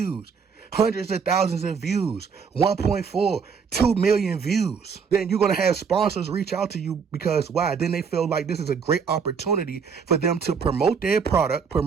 hundreds of thousands of views, 1.4, 2 million views, then you're going to have sponsors reach out to you because why? Then they feel like this is a great opportunity for them to promote their product,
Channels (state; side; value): quieter; left; 6.1 dB